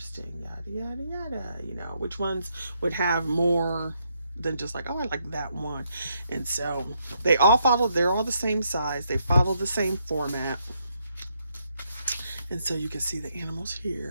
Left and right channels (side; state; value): both; inverted; correlation -0.76